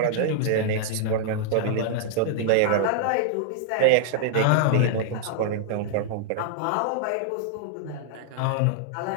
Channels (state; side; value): different; both; correlation -0.01